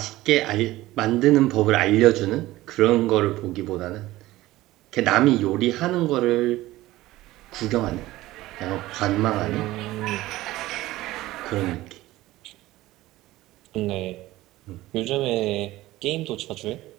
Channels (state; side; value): quieter; left; 17.2 dB